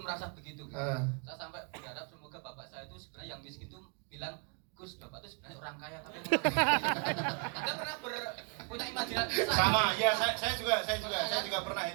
merasa begitu gitu. Saya sampai berharap semoga bapak saya itu sebenarnya yang miskin itu bilang, Gus, bapak itu sebenarnya orang kaya tapi Anda pernah punya imajinasi? Sama, ya saya juga pernah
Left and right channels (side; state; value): left; quieter; 39.2 dB